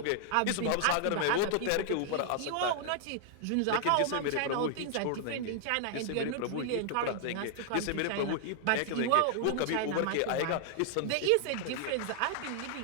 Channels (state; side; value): different; both; correlation 0.00